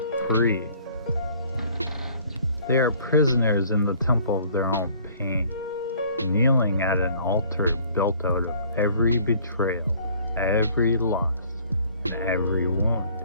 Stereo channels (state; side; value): inverted; both; correlation -0.55